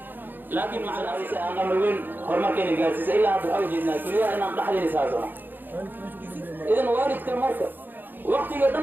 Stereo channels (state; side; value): late; left; 0.091 ms